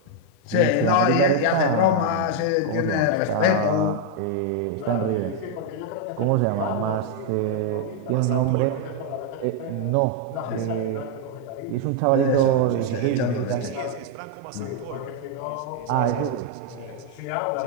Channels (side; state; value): both; different; correlation 0.00